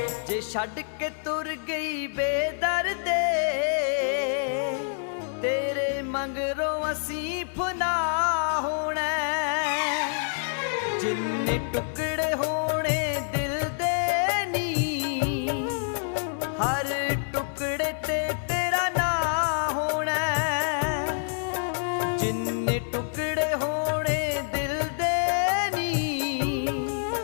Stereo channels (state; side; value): silent; right; digital silence